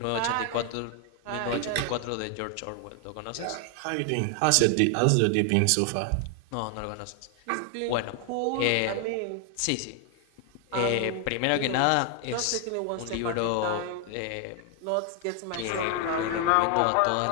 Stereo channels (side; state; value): both; different; correlation 0.00